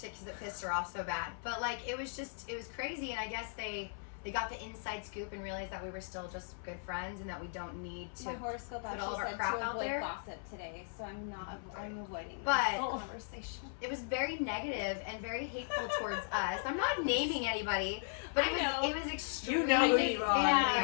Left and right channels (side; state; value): right; silent; 53 dB below the other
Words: it pissed her off so bad. But like it was crazy, and I guess they got the inside scoop and realized that we were still just good friends and that we don't need to. My horoscope put all actually of our said crap to out avoid there. gossip today, so I'm avoiding But- this conversation. It was very negative and very hateful towards us. I'm not naming anybody, but I know. it was extremely. You know who you are.